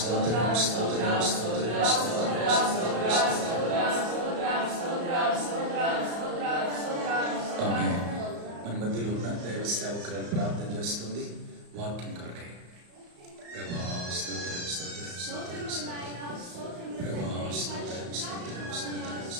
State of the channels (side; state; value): left; late; 34 ms